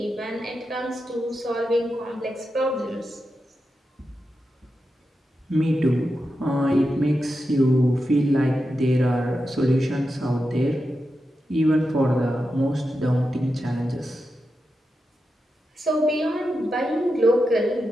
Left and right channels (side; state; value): both; normal; correlation 0.89